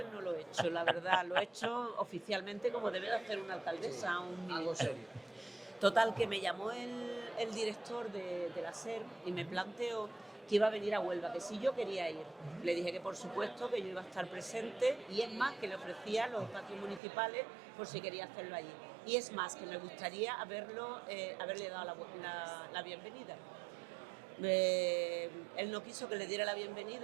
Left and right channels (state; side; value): drops out; left; at 17.0 s